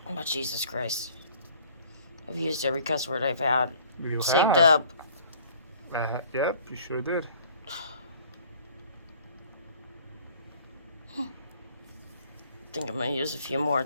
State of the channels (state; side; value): inverted; both; correlation -0.54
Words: Oh, Jesus Christ. I've used every cuss word I've had. You Saved have. up. Yep, you sure did. I think I'm going to use a few more